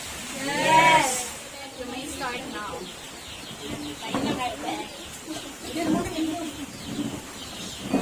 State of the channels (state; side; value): identical; both; correlation 1.00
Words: Yes. You may start now.